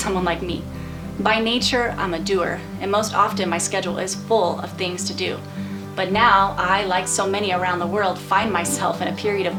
like me. By nature, I'm a doer, and most often my schedule is full of things to do. But now, I, like so many around the world, find myself in a period of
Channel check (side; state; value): both; identical; correlation 1.00